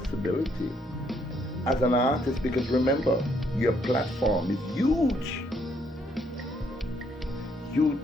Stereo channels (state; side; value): normal; both; correlation 0.70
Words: as an artist, because remember, your platform is huge.